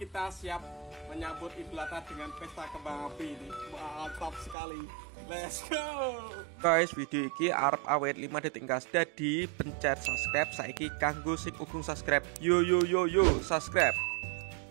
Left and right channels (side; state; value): left; drops out; at 4.5 s